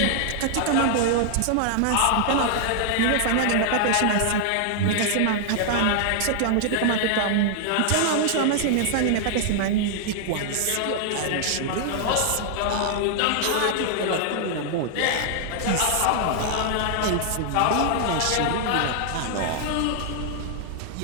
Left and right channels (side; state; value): both; different; correlation 0.00